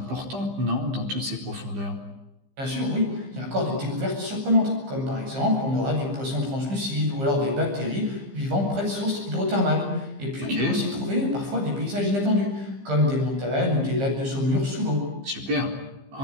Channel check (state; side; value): late; left; 15 ms